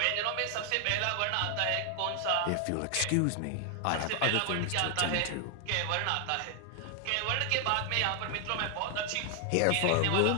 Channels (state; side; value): different; both; correlation 0.00